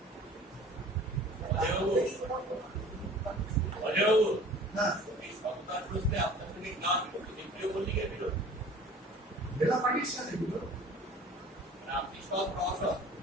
জেলা পার্টির সাথে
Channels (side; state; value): both; normal; correlation 0.46